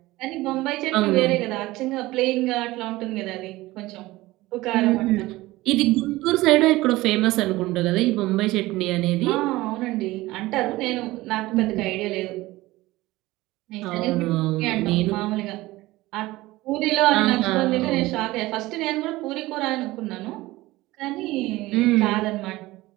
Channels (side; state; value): left; quieter; 18.7 dB